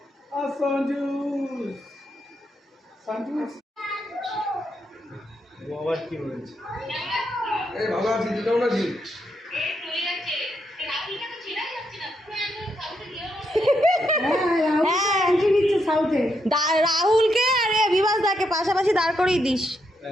আর সঞ্জু সঞ্জু বাবা কি বলেছে? এই ভালো আছি, তুই কেমন আছিস? রাহুলকে আরে বিভাস দাকে পাশাপাশি দাঁড় করিয়ে দিস,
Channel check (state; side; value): normal; both; correlation 0.80